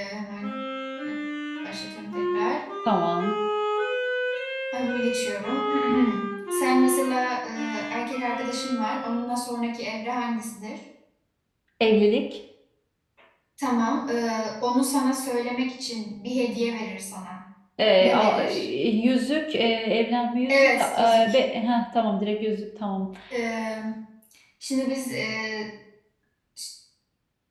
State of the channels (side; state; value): both; identical; correlation 1.00